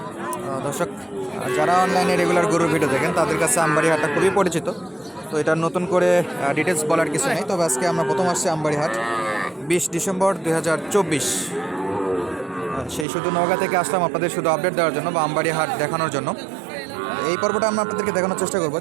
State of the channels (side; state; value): left; drops out; at 13.1 s